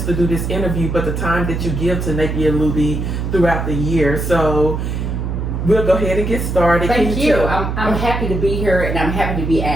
to do this interview, but the time that you give to Napier-Looby throughout the year. So we'll go ahead and get started. Thank you. I'm happy to be here, and I'm happy to be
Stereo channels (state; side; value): noise; right; hum, 3 dB below the sound